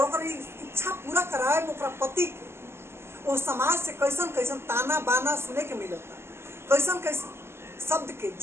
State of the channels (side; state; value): left; late; 0.12 ms